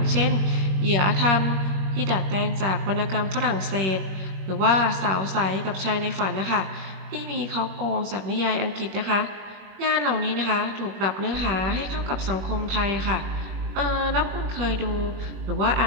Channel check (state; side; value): late; left; 21 ms